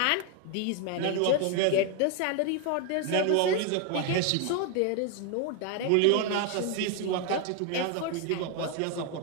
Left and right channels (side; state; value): both; different; correlation 0.01